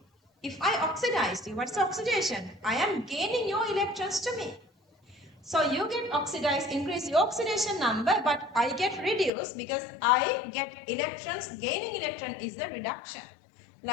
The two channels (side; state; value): right; drops out; at 9.3 s